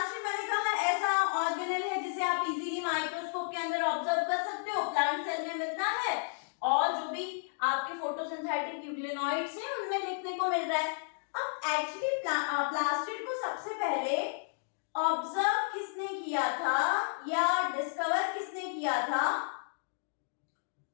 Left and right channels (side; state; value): right; silent; digital silence